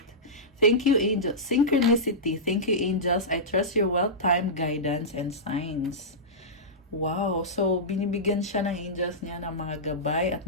Thank you, angels. Synchronicity. Thank you, angels. I trust your well-timed guidance and signs. Wow. So, binibigyan siya ng angels niya ng mga gabay at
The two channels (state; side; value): normal; both; correlation -0.15